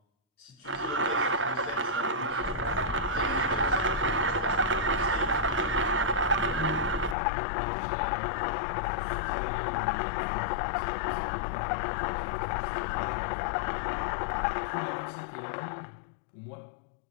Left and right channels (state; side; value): drops out; right; at 7.2 s